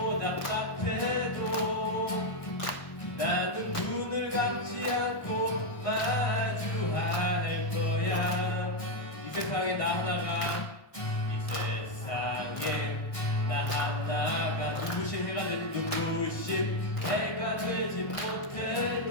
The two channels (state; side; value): late; right; 1.2 ms